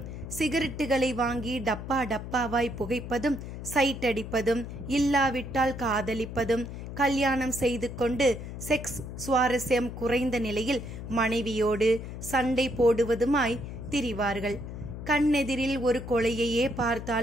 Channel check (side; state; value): left; noise; hum, 9 dB below the sound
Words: சிகரெட்டுகளை வாங்கி டப்பா டப்பாவாய் புகைப்பதும், சைட் அடிப்பதும், இல்லாவிட்டால் காதலிப்பதும், கல்யாணம் செய்து கொண்டு செக்ஸ் சுவாரஸ்யம் குறைந்த நிலையில் மனைவியோடு சண்டை போடுவதுமாய் திரிவார்கள். கண்ணெதிரில் ஒரு கொலையையே